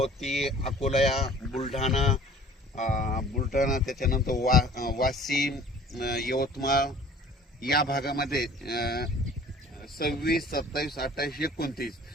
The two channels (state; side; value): normal; both; correlation 0.49